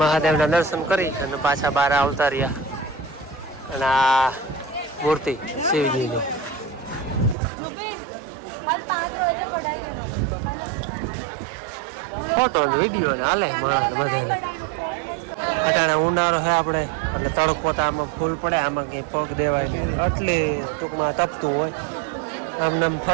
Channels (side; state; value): left; drops out; at 7.4 s